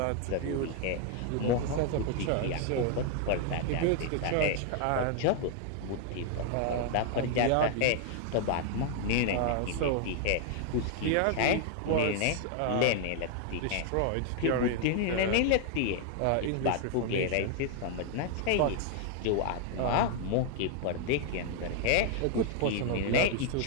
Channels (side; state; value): both; different; correlation 0.00